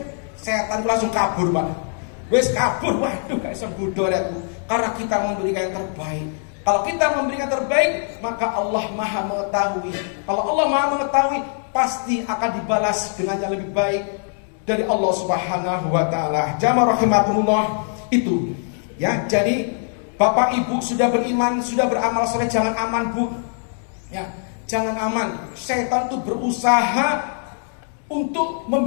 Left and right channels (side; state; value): right; silent; 59 dB below the other